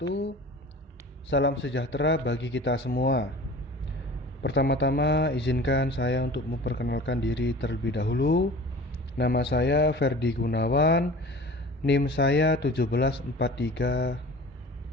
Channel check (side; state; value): both; normal; correlation 0.40